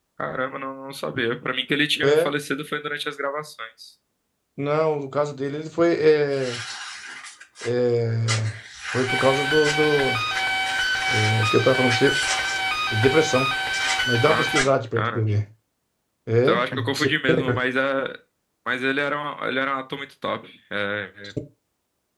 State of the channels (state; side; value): identical; both; correlation 1.00